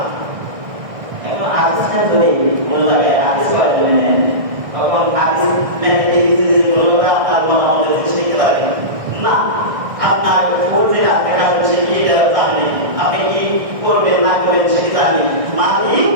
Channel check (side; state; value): left; late; 1.6 ms